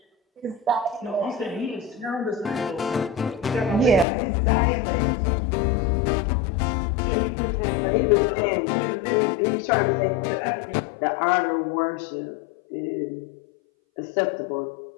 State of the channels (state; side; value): drops out; right; at 4.0 s